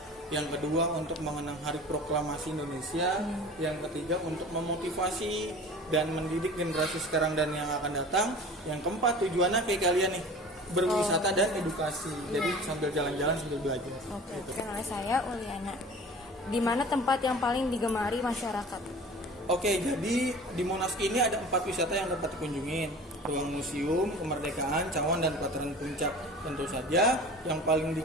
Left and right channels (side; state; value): both; normal; correlation 0.41